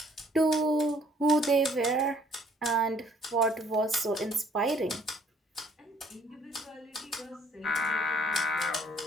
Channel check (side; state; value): both; normal; correlation 0.61